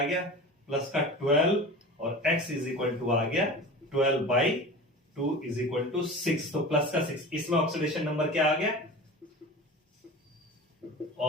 गया प्लस का 12 और x इज इक्वल टू आ गया 12/2 इज इक्वल टू 6, तो प्लस का 6। इसमें ऑक्सीडेशन नंबर क्या आ गया,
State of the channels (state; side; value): normal; both; correlation 0.34